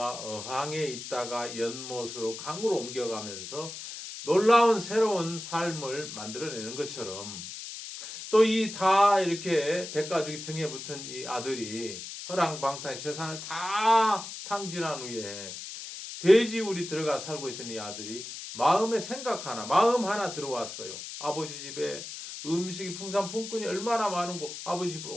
어항에 있다가 연못으로 강으로 옮겨가면서 놀라운 새로운 삶을 만들어내는 것처럼 또 이 다 이렇게 백가죽이 등에 붙은 이 아들이 허랑방탕 재산을 다 탕진한 후에 돼지우리 들어가 살고 있던 이 아들이 마음 하나 들어왔어요. 아버지 집에 음식이 풍산 품꾼이 얼마나 많은고 아버지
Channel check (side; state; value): left; noise; hiss, 10 dB below the sound